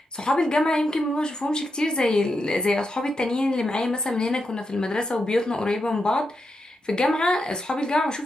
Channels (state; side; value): normal; both; correlation 0.86